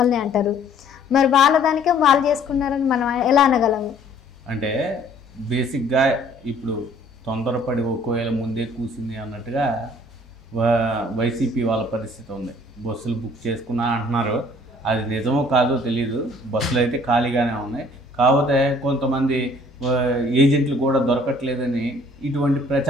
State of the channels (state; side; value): normal; both; correlation 0.57